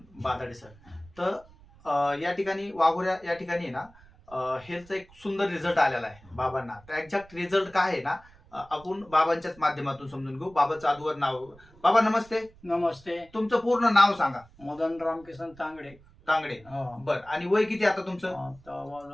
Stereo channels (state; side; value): noise; right; rumble, 25 dB below the sound